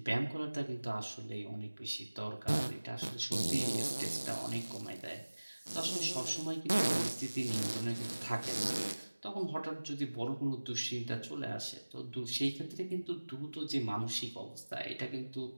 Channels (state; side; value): inverted; both; correlation -1.00